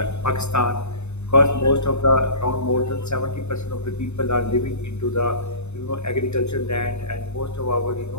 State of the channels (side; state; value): right; late; 0.81 ms